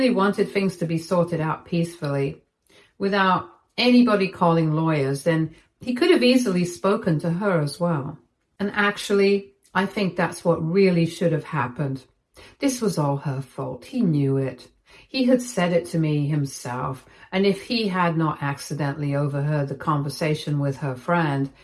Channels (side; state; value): both; identical; correlation 1.00